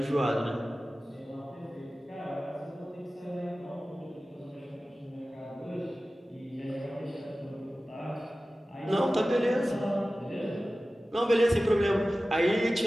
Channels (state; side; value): normal; both; correlation 0.96